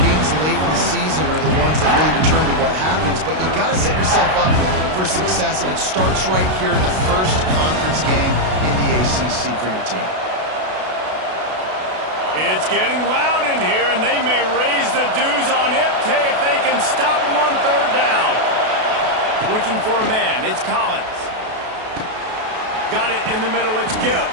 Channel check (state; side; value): late; left; 32 ms